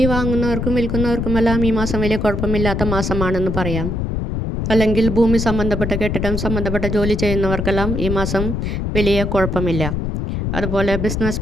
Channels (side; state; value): left; noise; rumble, 2 dB below the sound